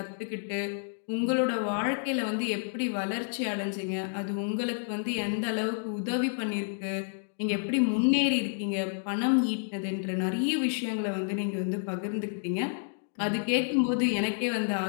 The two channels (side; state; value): right; silent; digital silence